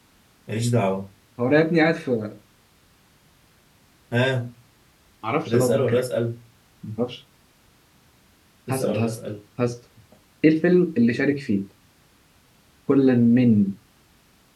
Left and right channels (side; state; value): both; identical; correlation 1.00